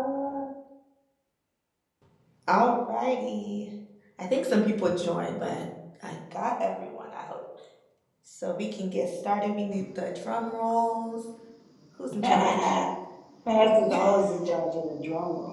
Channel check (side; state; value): both; identical; correlation 1.00